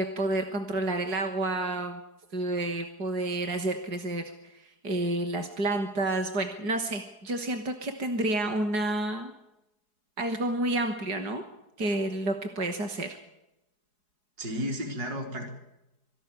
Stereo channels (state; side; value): late; left; 4.8 ms